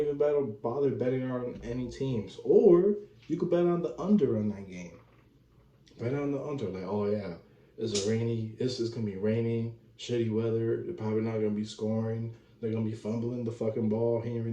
bother betting on any teams. Or you could bet on the under on that game. Bet on the under. Like, oh yeah, it's rainy. This is gonna be rainy, shitty weather. They're probably not gonna be scoring. They're gonna be fumbling the fucking ball here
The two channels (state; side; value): identical; both; correlation 1.00